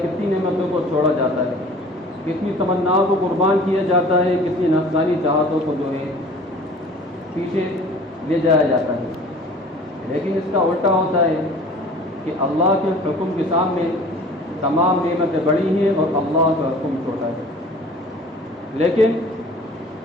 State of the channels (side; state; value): both; normal; correlation 0.46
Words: کتنی نعمتوں کو چھوڑا جاتا ہے، کتنی تمناؤں کو قربان کیا جاتا ہے، کتنی نفسانی چاہتوں کو جو ہے پیچھے لے جایا جاتا ہے. لیکن اس کا الٹا ہوتا ہے کہ اللہ کے حکم کے سامنے تمام نعمتیں بڑی ہیں اور اللہ کا حکم چھوٹا ہے. لیکن